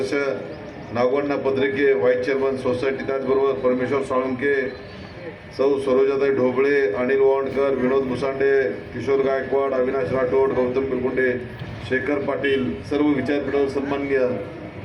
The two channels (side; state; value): both; identical; correlation 1.00